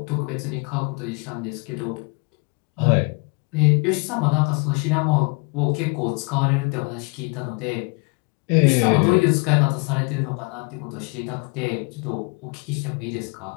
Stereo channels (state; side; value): quieter; right; 32.4 dB